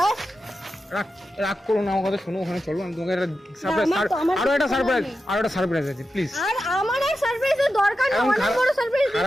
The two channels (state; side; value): normal; both; correlation 0.90